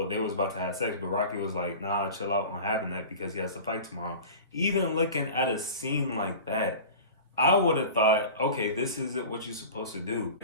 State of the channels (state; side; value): inverted; both; correlation -0.36